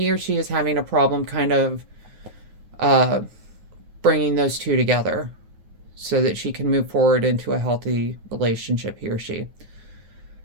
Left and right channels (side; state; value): left; late; 9.4 ms